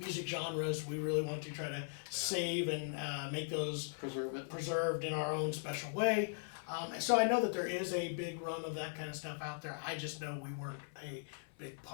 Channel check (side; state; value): right; silent; 52 dB below the other